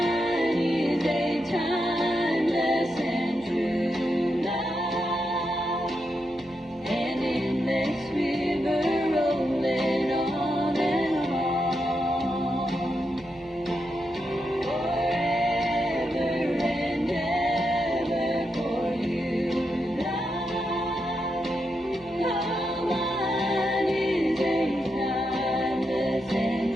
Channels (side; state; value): right; noise; hum, 26 dB below the sound